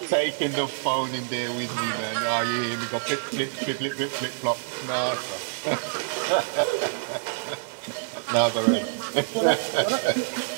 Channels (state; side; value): silent; left; digital silence